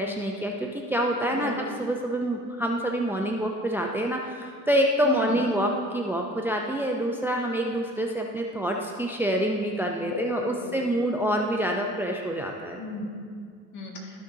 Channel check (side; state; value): both; normal; correlation 0.50